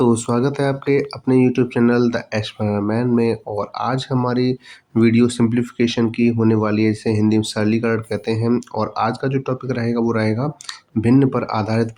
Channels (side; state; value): both; identical; correlation 1.00